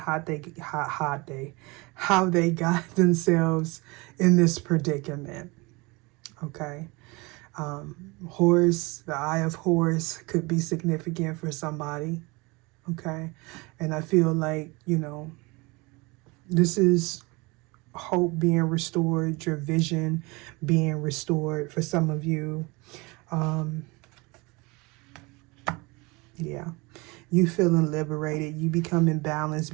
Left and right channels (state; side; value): quieter; left; 25.7 dB